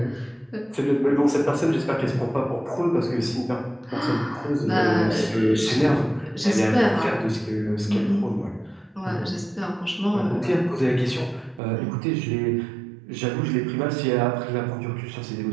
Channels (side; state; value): left; drops out; at 11.6 s